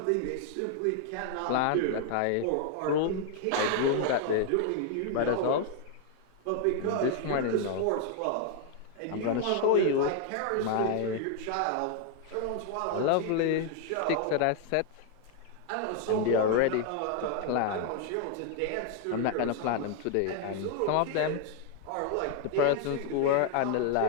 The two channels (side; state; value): both; different; correlation 0.00